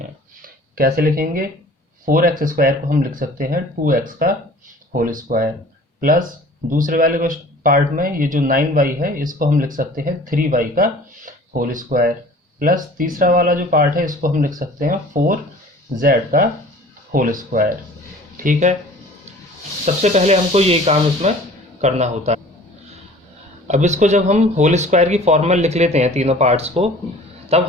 कैसे लिखेंगे? 4x² को हम लिख सकते हैं 2x का होल स्क्वायर प्लस दूसरे वाले पार्ट में ये जो 9y है इसको हम लिख सकते हैं 3y का होल स्क्वायर प्लस तीसरा वाला जो पार्ट है इसको हम लिख सकते हैं 4z का होल स्क्वायर। ठीक है, सबसे पहले हमको ये काम इसमें करना होता है। अब इसको जब हम होल स्क्वायर की फॉर्म में लिख लेते हैं तीनों पार्ट्स को, तब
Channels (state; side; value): normal; both; correlation 0.47